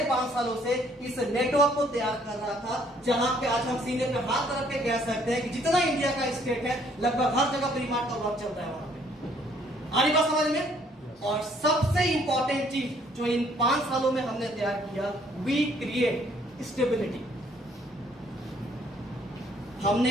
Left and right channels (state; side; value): normal; both; correlation 0.63